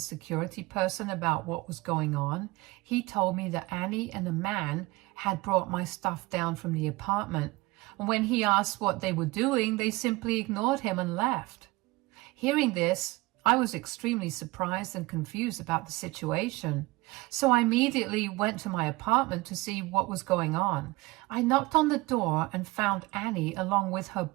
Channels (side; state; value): left; quieter; 21.8 dB